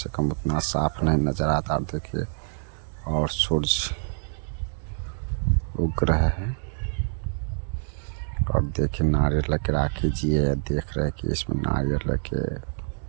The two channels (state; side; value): silent; left; digital silence